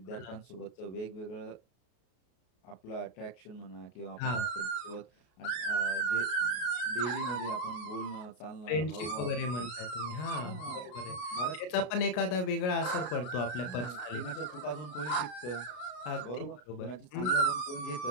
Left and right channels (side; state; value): right; late; 33 ms